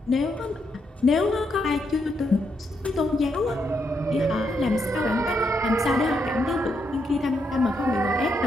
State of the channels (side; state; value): both; normal; correlation 0.79